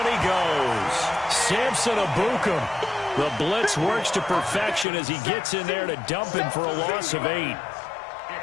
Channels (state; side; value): drops out; right; at 4.9 s